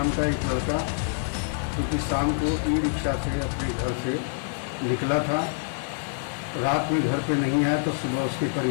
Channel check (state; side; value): silent; right; 61 dB below the other